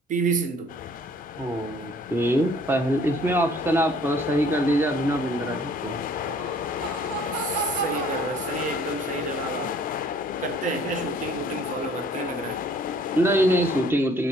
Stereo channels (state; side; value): normal; both; correlation 0.56